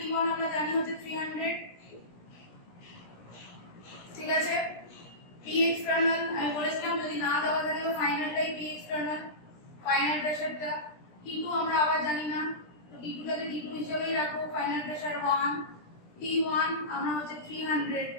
আমরা জানি হচ্ছে 300। ঠিক আছে। P এক্সটার্নাল আমি বলেছিলাম যদি না দেওয়া থাকে ফাইনালটাই P এক্সটার্নাল, ফাইনাল প্রেসারটা। T2 আমরা আবার জানি না, তো T2টাকে T2 হিসেবেই রাখো, ফাইনাল প্রেসার 1। T1 আমরা হচ্ছে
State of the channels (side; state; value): right; late; 17 ms